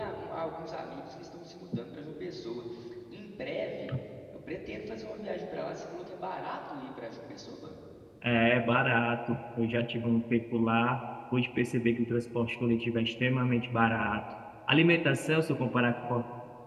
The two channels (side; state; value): both; identical; correlation 1.00